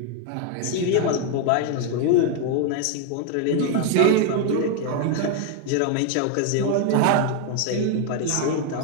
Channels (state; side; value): different; both; correlation 0.00